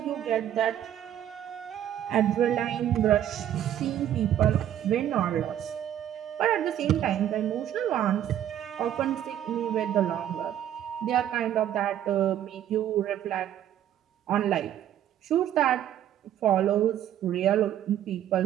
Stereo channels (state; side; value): quieter; left; 11.0 dB